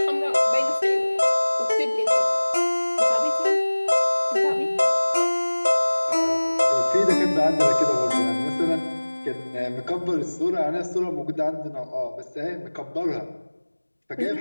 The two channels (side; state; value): both; inverted; correlation -1.00